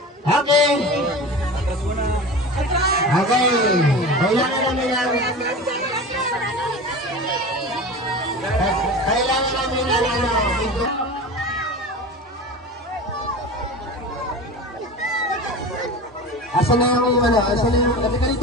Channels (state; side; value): normal; both; correlation 0.31